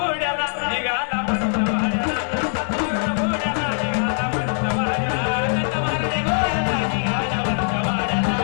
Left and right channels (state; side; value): silent; right; 60 dB below the other